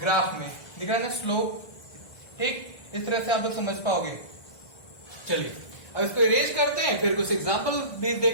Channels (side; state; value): right; late; 1.6 ms